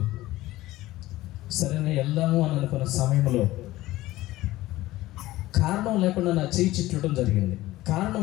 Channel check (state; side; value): quieter; right; 16.9 dB